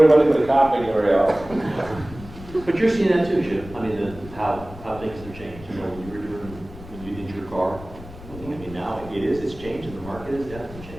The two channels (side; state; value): left; noise; rumble, 16 dB below the sound